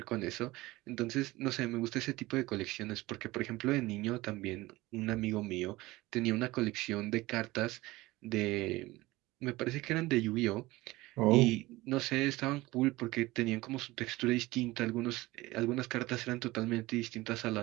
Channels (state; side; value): quieter; left; 19.5 dB